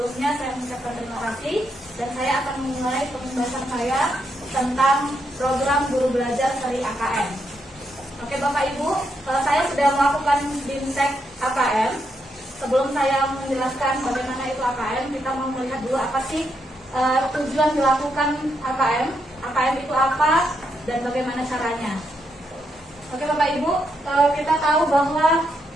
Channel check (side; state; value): both; normal; correlation 0.80